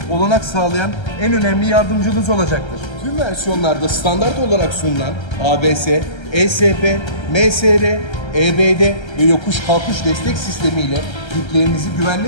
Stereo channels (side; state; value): right; late; 1.3 ms